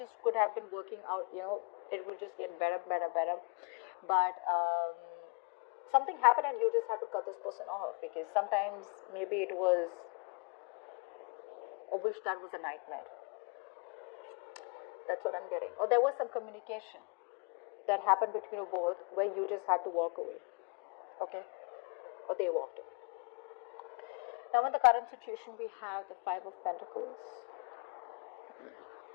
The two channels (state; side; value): quieter; right; 33.8 dB